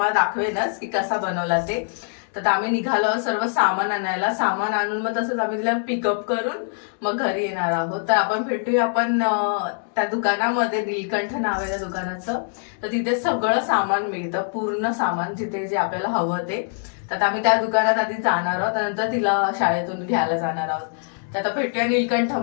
दाखवेनच की कसा बनवला ते. तर आम्ही निघालो सर्व सामान आणायला. सामान आणून मग तसंच आम्ही तिला पिकअप करून मग घरी येणार आहोत. तर आपण भेटूया आपण त्या दुकानामध्ये, नीलकंठ नाव आहे त्या दुकानाचं. तर तिथे सगळं सामान मिळतं, पूर्ण सामान जिथे जे आपल्याला हवं ते. तर आम्ही त्या दुकानात आधी जाणार आहोत, त्यानंतर तिला शाळेतून घ्यायला जाणार आहोत. तर आता भेटूया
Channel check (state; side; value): silent; right; 63 dB below the other